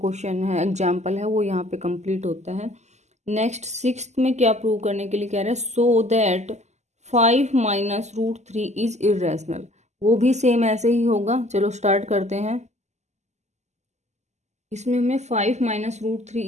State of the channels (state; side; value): late; left; 0.33 ms